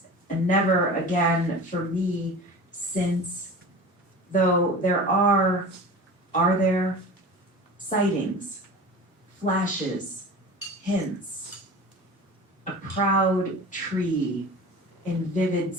and never again for me since, though there are there sightings, flashes, hints a proud tree in vivid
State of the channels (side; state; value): both; normal; correlation 0.35